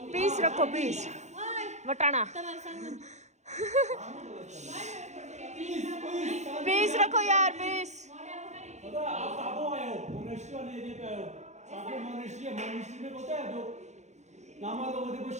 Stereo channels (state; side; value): late; left; 0.33 ms